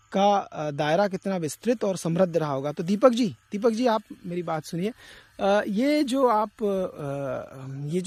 का दायरा कितना विस्तृत और समृद्ध रहा होगा। तो दीपक जी आप मेरी बात सुनिए। ये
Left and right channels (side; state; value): both; identical; correlation 1.00